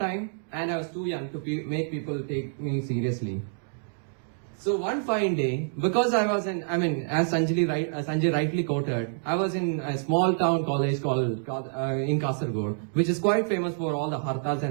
and I was too young to make people take me seriously. So one fine day, because I was as Sanjay rightly quoted, I was in a small town college called in Kasaragod, which is quite famous for all the hartals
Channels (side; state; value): left; silent; digital silence